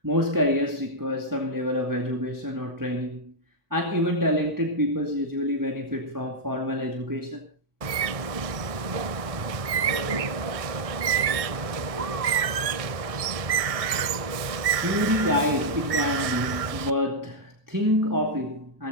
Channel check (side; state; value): left; late; 1.6 ms